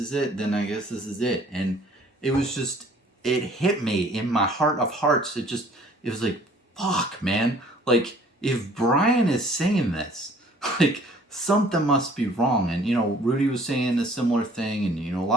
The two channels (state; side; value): normal; both; correlation 0.55